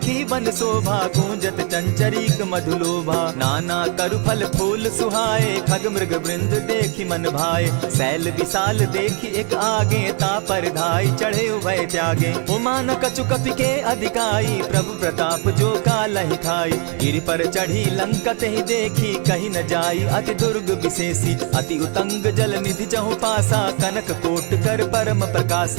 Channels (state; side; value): quieter; left; 38.6 dB